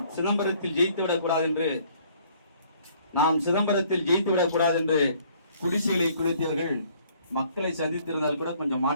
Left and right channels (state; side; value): inverted; both; correlation -0.60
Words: சிதம்பரத்தில் ஜெயித்து விடக் கூடாது என்று குடிசைகளை குளித்தவர்கள் மக்களை சந்தித்திருந்தால் கூட கொஞ்சம்